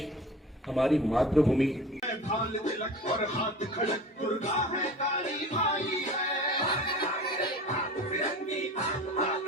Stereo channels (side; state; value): both; normal; correlation 0.38